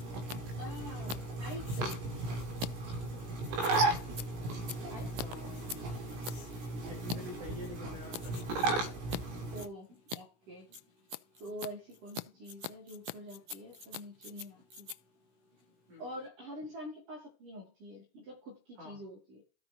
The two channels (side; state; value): left; late; 16 ms